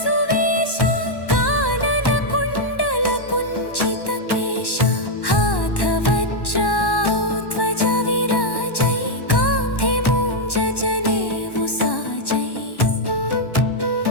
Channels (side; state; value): right; late; 1.1 ms